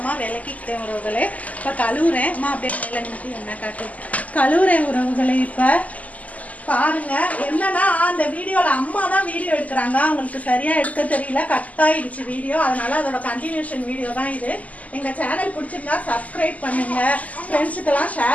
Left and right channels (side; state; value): right; late; 0.073 ms